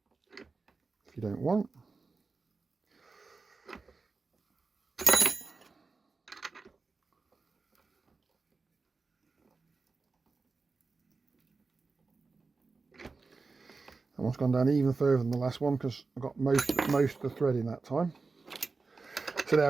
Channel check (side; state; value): left; quieter; 4.1 dB